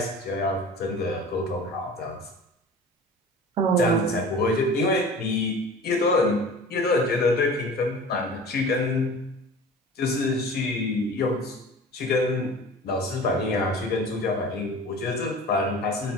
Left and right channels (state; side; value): normal; both; correlation 0.40